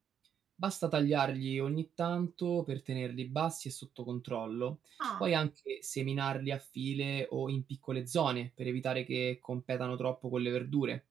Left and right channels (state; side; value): quieter; left; 8.5 dB